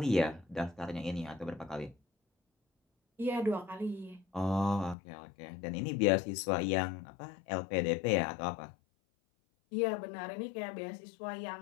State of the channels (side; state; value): right; drops out; at 5.0 s